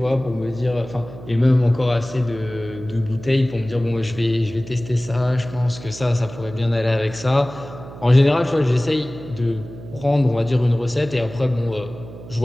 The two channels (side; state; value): right; noise; hum, 15 dB below the sound